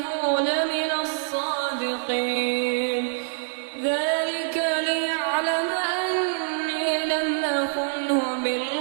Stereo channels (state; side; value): silent; left; digital silence